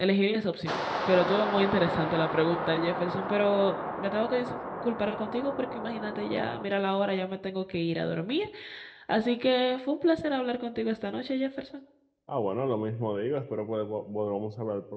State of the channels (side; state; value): both; identical; correlation 1.00